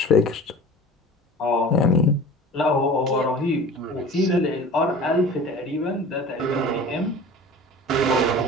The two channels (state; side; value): normal; both; correlation 0.40